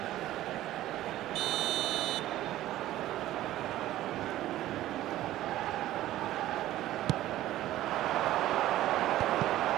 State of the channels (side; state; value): left; quieter; 14.5 dB